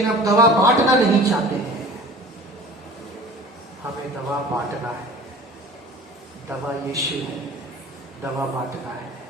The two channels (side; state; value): both; normal; correlation 0.43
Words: आप दवा बांटना नहीं चाहते हैं। हमें दवा बांटना है। दवा यीशु है, दवा बांटना है।